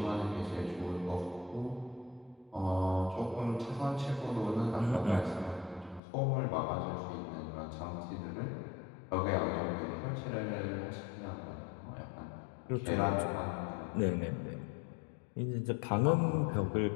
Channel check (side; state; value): right; drops out; at 6.0 s